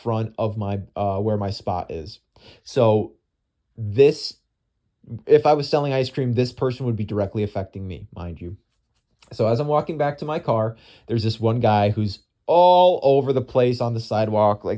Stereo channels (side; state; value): both; identical; correlation 1.00